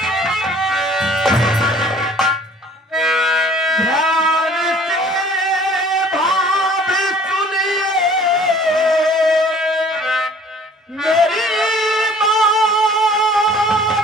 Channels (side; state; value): both; normal; correlation 0.52